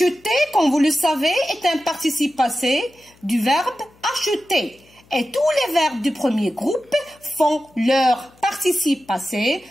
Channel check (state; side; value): noise; left; hum, 30 dB below the sound